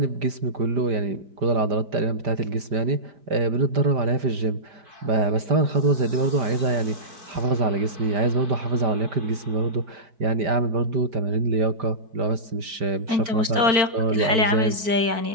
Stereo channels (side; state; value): left; late; 4.5 ms